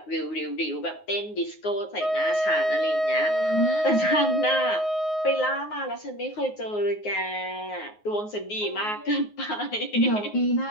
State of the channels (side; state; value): right; late; 9.5 ms